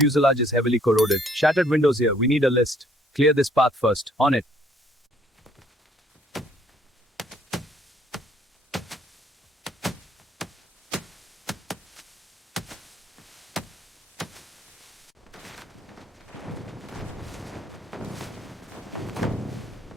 is heavily corroded. Shattered windows here. We need a list. Clear this path first. On it.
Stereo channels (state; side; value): normal; both; correlation 0.63